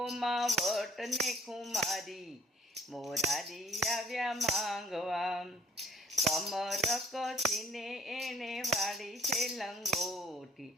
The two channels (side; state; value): both; normal; correlation 0.57